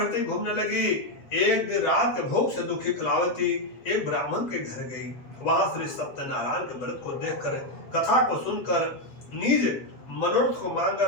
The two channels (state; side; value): late; right; 8.0 ms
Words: घूमने लगी। एक दिन रात के भोग से दुखी कलावती एक ब्राह्मण के घर गई। वहां श्री सत्यनारायण के व्रत को देखकर, कथा को सुनकर, निज मनोरथ को